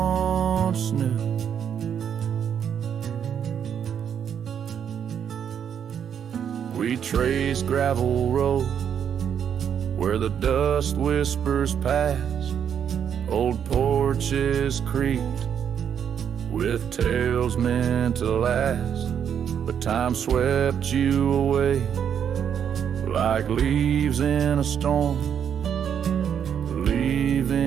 knew. We trace gravel road where the dust whispers past, old porches creaked with tales meant to last. But time swept you away like leaves in a storm,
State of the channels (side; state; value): left; quieter; 8.3 dB